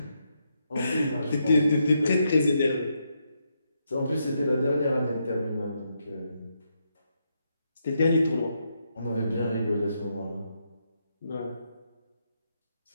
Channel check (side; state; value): both; inverted; correlation -0.80